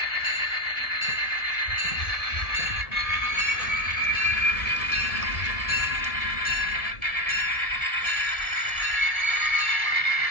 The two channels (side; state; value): right; late; 1.7 ms